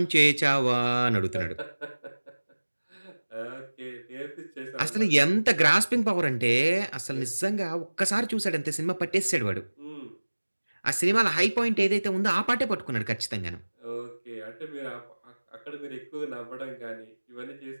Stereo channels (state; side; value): inverted; both; correlation -1.00